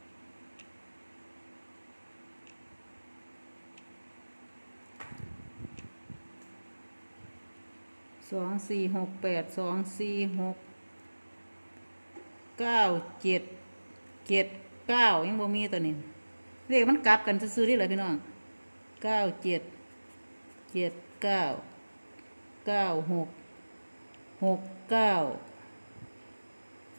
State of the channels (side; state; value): both; inverted; correlation -1.00